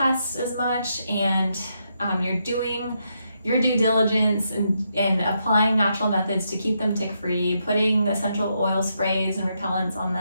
as much, and you're doing your due diligence in applying natural methods to keep them tick-free, putting essential oil sprays and repellents on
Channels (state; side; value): inverted; both; correlation -0.80